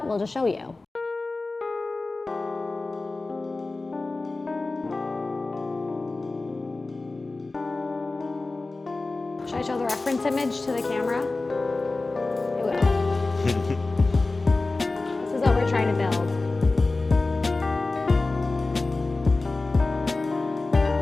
We'll just show you. Should I show the reference image to the camera? I will. This is what we're trying to build.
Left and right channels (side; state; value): right; quieter; 3.4 dB